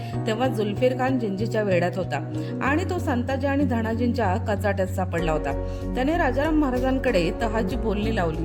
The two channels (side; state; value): both; identical; correlation 1.00